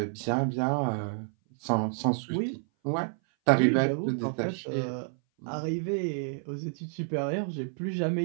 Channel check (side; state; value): left; silent; 57 dB below the other